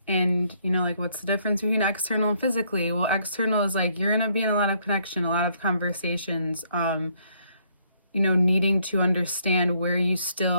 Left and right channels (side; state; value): both; inverted; correlation -0.69